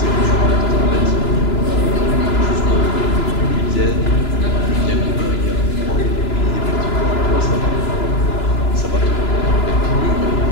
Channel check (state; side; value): late; right; 2.9 ms